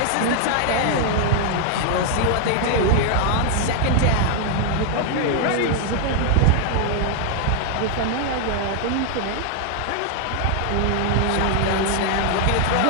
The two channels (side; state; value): both; different; correlation 0.00